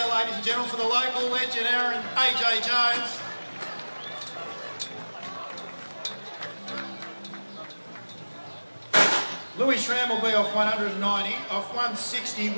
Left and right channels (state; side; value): inverted; both; correlation -1.00